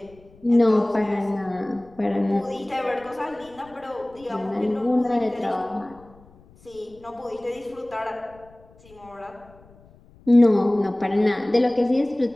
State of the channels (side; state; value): left; noise; rumble, 26 dB below the sound